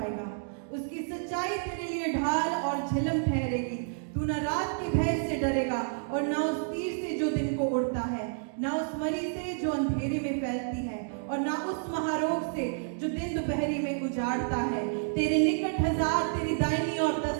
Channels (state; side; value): silent; left; digital silence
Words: उसकी सच्चाई तेरे लिए ढाल और झिलम ठहरेगी। तू न रात के भय से डरेगा और न उस तीर से जो दिन को उड़ता है, न उस मरी से जो अंधेरे में फैलती है, और न उस महारोग से जो दिन दोपहरी में उजाड़ता है। तेरे निकट 1000 तेरी दाहिनी और